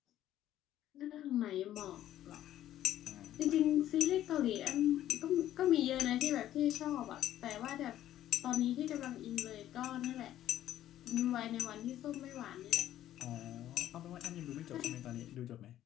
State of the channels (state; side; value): quieter; right; 12.5 dB